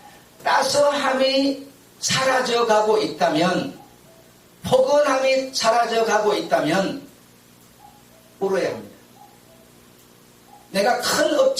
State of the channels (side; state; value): both; identical; correlation 1.00